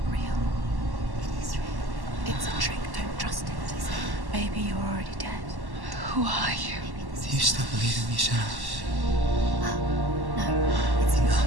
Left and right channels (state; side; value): late; left; 1.1 ms